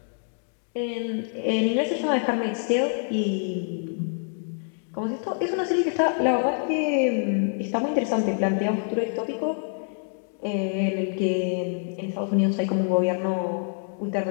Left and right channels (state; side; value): silent; right; 61 dB below the other